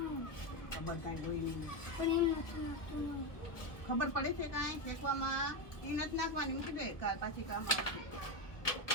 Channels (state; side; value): late; right; 1.3 ms